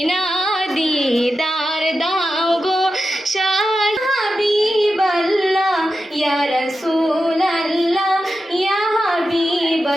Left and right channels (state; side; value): normal; both; correlation 0.91